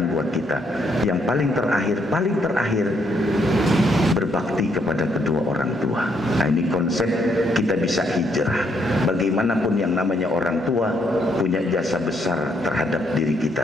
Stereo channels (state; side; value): normal; both; correlation 0.73